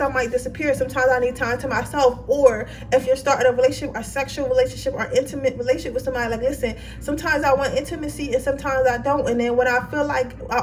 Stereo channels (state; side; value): identical; both; correlation 1.00